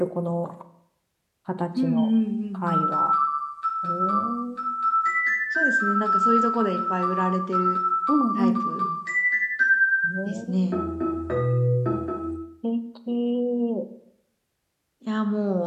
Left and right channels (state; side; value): identical; both; correlation 1.00